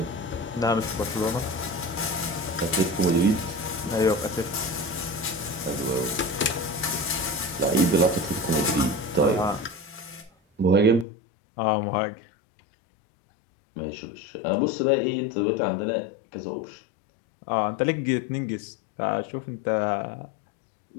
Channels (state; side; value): drops out; right; at 11.1 s